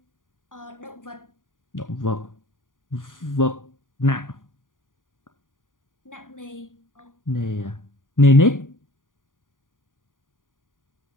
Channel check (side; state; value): right; late; 0.89 ms